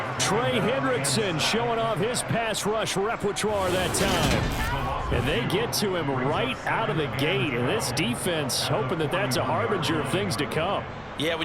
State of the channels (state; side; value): identical; both; correlation 1.00